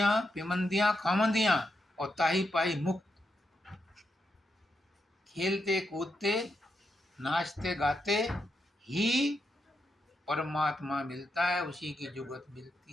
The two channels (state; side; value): normal; both; correlation 0.84